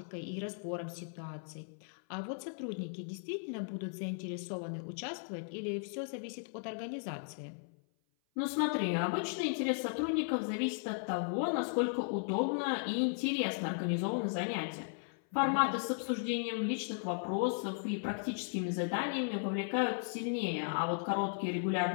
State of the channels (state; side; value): silent; right; 54 dB below the other